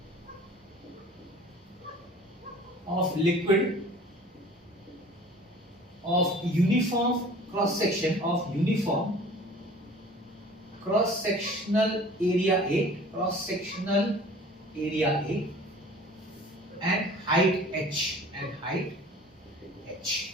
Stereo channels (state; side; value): normal; both; correlation 0.47